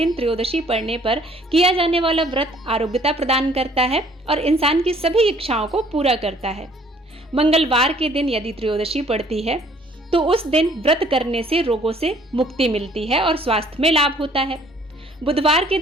त्रयोदशी पड़ने पर किया जाने वाला व्रत आरोग्यता प्रदान करता है और इंसान की सभी इच्छाओं को पूरा करता है। मंगलवार के दिन यदि त्रयोदशी पड़ती है तो उस दिन व्रत करने से रोगों से मुक्ति मिलती है और स्वास्थ्य में लाभ होता है। बुधवार के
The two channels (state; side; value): normal; both; correlation 0.59